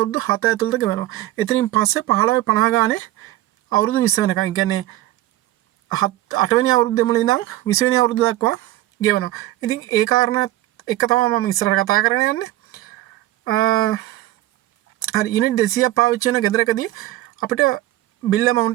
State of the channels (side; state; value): left; quieter; 15.8 dB